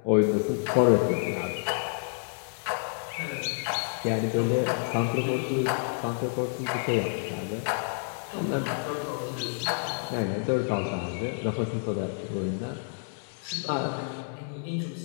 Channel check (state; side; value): silent; right; digital silence